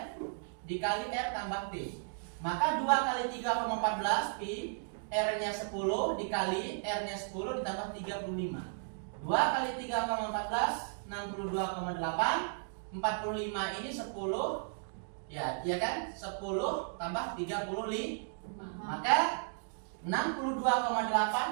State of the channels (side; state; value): left; silent; digital silence